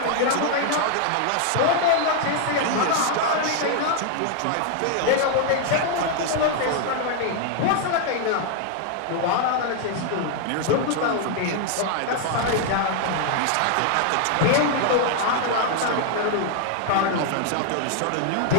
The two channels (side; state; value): both; different; correlation 0.00